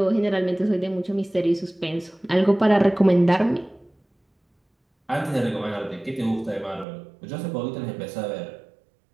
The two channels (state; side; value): drops out; left; at 6.9 s